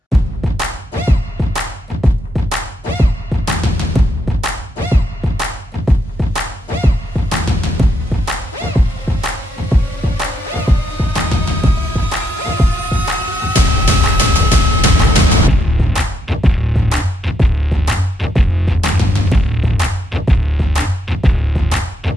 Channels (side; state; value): both; normal; correlation 0.78